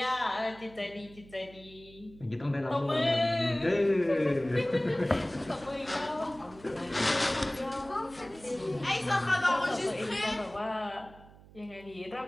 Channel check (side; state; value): right; noise; hum, 22 dB below the sound